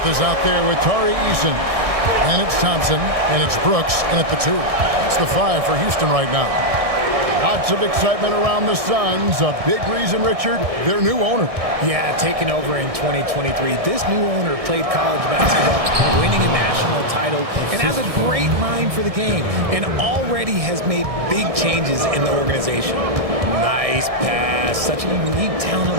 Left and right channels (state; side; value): late; left; 1.6 ms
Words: is out there with Tari Eason. Then it's Thompson, and it's Brooks in at the 2. It's the 5 for Houston right now. Lots of excitement around the Suns. A big reason, Richard, their new owner. Yeah, taking over in 2023. This new owner played college basketball, winning a national title, and has a great mind for the game, and already has made big changes in the organization. Nice pass. Such a unique talent